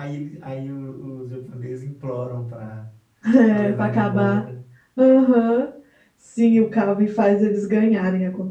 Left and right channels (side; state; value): both; identical; correlation 1.00